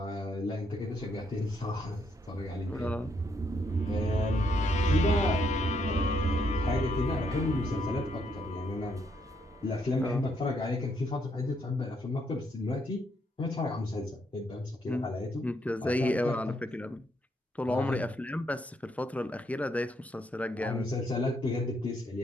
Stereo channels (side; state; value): both; normal; correlation 0.74